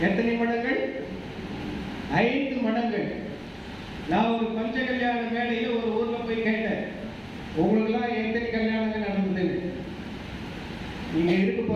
எத்தனை மடங்கள்? 5 மடங்கள். நான் ஒரு பஞ்ச கல்யாண மேடையில் ஒரு ஊர்ல போய் கேட்டேன், உங்களுக்குலாம் எத்தனை கல்யாணங்கள் நடந்தது? நீங்க இருக்க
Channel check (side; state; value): both; identical; correlation 1.00